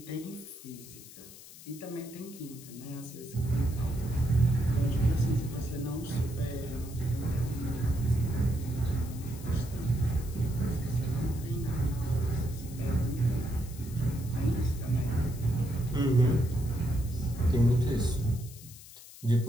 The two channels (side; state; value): left; noise; hiss, 17 dB below the sound